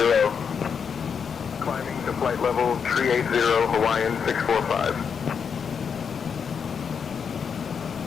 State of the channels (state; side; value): quieter; right; 6.6 dB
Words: Climbing to flight level 380, Hawaiian 645.